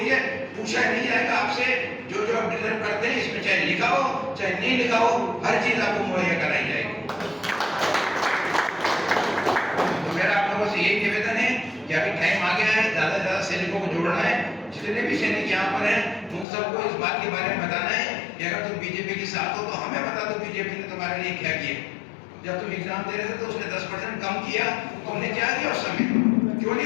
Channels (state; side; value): drops out; right; at 16.4 s